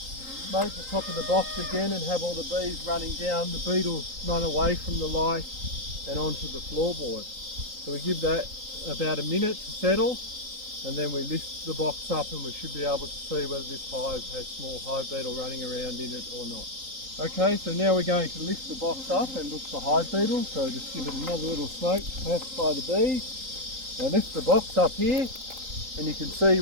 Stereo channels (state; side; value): late; left; 3.8 ms